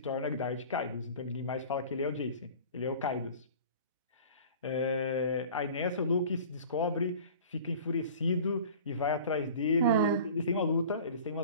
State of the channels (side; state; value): both; inverted; correlation -0.43